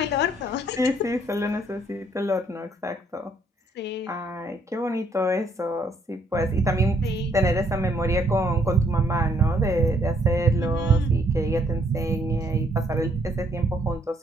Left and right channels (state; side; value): normal; both; correlation 0.68